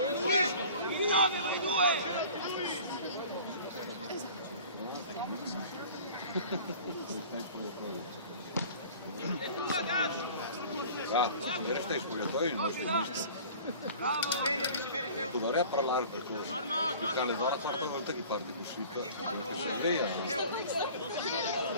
Ieri stai spogliatoio il nostro mister. Dovrei a parlare per questo. Perché alle ore certe volte che parli così, perché sei via.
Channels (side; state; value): both; inverted; correlation -0.44